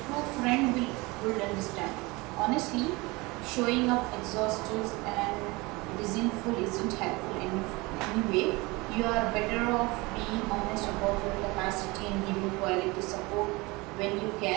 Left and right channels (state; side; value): quieter; left; 24.0 dB